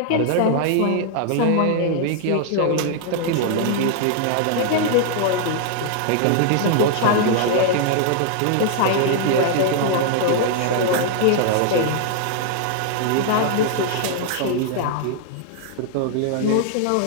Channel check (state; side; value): different; both; correlation 0.00